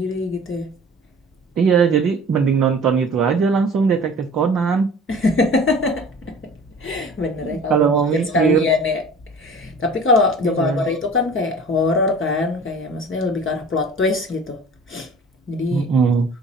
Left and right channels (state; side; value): normal; both; correlation 0.44